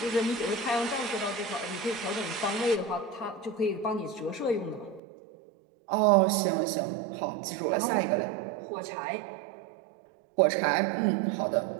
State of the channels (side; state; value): left; drops out; at 5.0 s